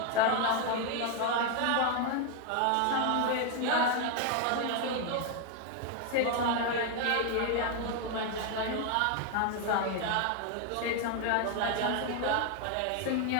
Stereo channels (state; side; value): different; both; correlation 0.01